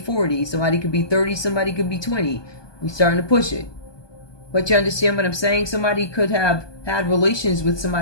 Somebody could be 30, somebody could be 20. We're starting to push it. But you understand what I'm saying? Somebody could have had relations with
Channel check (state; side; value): late; right; 1.2 ms